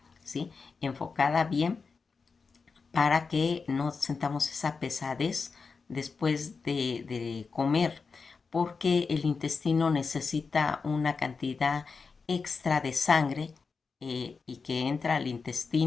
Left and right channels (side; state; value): right; quieter; 4.9 dB